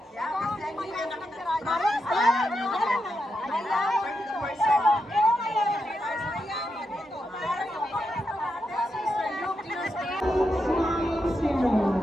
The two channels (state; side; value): normal; both; correlation 0.85